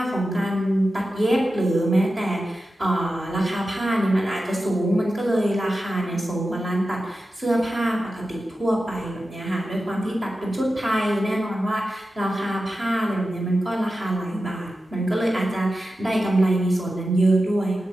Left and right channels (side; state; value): both; normal; correlation 0.92